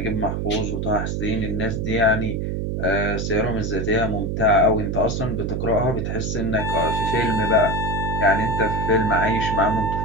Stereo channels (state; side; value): noise; right; hum, 2 dB below the sound